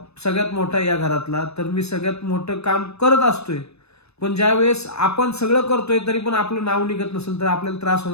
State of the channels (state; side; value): late; right; 0.79 ms